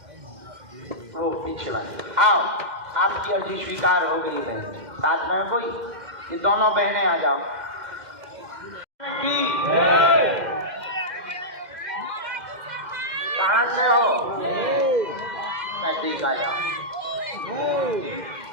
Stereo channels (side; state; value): left; late; 2.1 ms